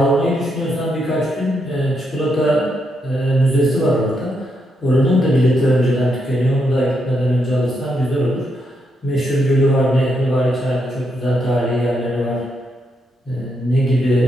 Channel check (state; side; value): normal; both; correlation 0.80